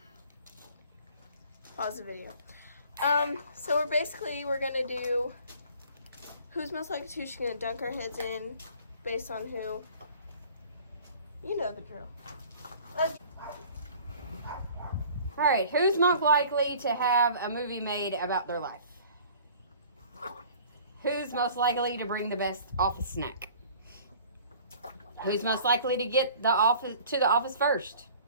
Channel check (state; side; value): inverted; both; correlation -0.49